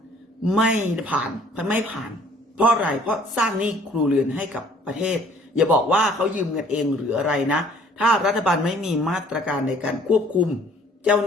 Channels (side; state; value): both; normal; correlation 0.57